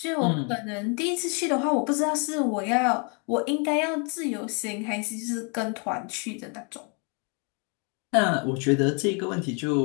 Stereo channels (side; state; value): right; quieter; 36.0 dB